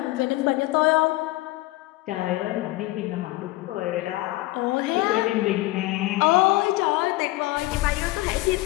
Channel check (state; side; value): quieter; right; 19.1 dB